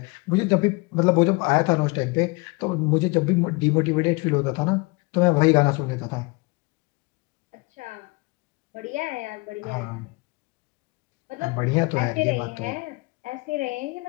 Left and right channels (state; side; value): quieter; right; 26.5 dB